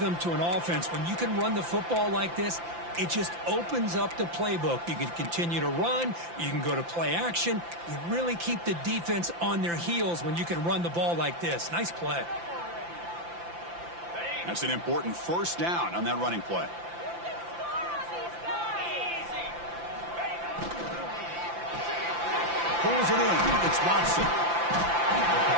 to an offense. When you can run the football like this, it just opens up the playbook. You can continue to run. You can go to play action. You really keep the defense on their heels when you can run the ball like this. Nice play. That's an important first down on that running play. Pulls it in. It's Watson.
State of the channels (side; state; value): left; late; 5.8 ms